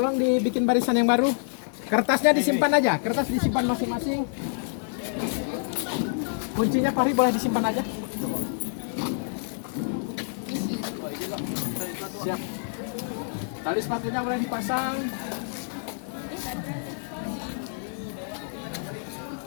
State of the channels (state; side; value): silent; right; digital silence